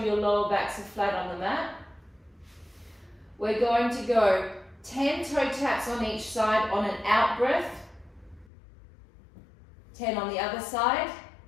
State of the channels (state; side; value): drops out; right; at 8.5 s